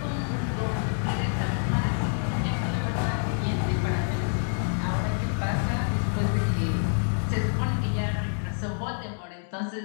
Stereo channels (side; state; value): right; silent; 60 dB below the other